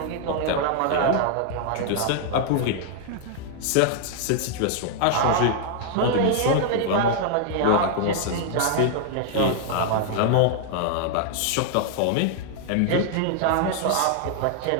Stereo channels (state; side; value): different; both; correlation 0.00